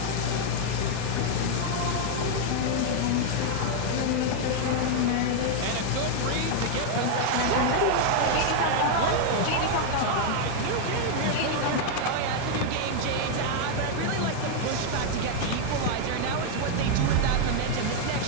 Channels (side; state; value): both; different; correlation 0.00